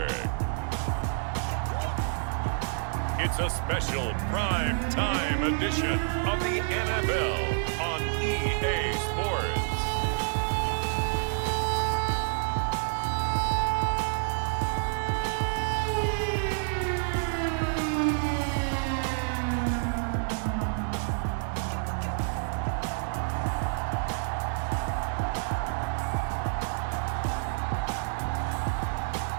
it's a special prime time edition of the NFL on EA Sports.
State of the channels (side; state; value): left; silent; 59 dB below the other